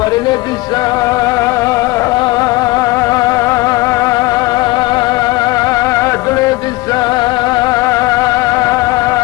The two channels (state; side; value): quieter; right; 20.9 dB